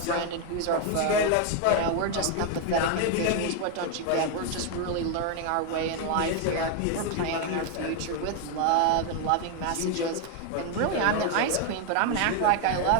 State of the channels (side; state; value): both; different; correlation 0.01